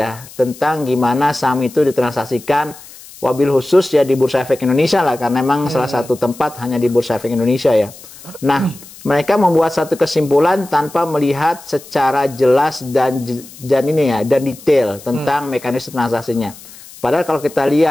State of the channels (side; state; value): left; noise; hiss, 19 dB below the sound